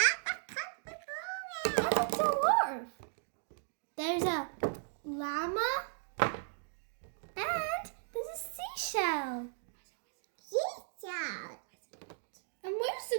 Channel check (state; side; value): silent; left; digital silence